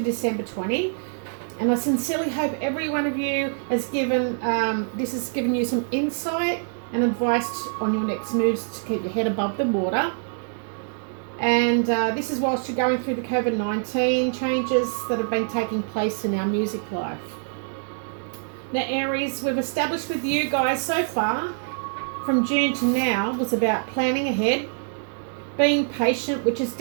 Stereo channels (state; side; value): silent; left; digital silence